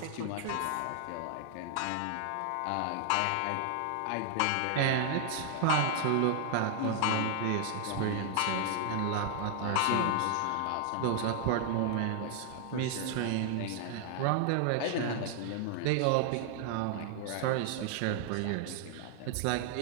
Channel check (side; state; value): both; different; correlation 0.00